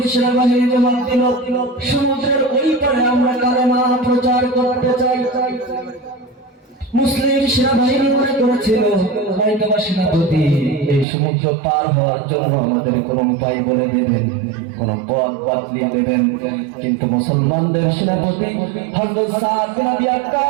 সেনাবাহিনী জবাব দিল, সমুদ্রের ওই পারে আমরা কালেমা প্রচার করতে চাই। মুসলিম সেনাবাহিনী মনে করেছিল হয়তোবা সেনাপতি এই সমুদ্র পার হওয়ার জন্য আমাদের কোন উপায় বলে দেবেন, কোন পথ বাতলিয়ে দেবেন, কিন্তু মুসলমানদের সেনাপতি হযরত সাদ বিন আবি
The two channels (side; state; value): left; drops out; at 11.1 s